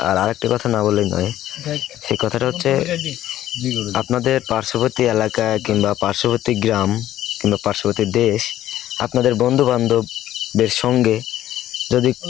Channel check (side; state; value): right; quieter; 13.0 dB